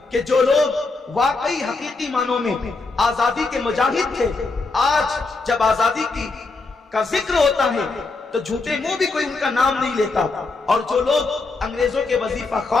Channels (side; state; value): right; quieter; 3.7 dB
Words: کہ جو لوگ واقعی حقیقی معنوں میں آزادی کے مجاہد تھے، آج جب آزادی کا ذکر ہوتا ہے تو جھوٹے منہ بھی کوئی ان کا نام نہیں لیتا، اور جو لوگ انگریزوں کے وظیفہ